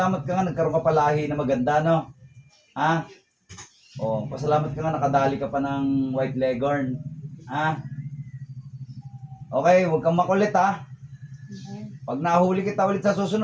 ka nga, nagkaroon ka palahi na maganda, no? Ha? Oh, pasalamat ka nga, nakadali ka pa ng white leghorn. Ha? Okay, huwag kang makulit, ha? Pag nahuli kita ulit sa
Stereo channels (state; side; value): identical; both; correlation 1.00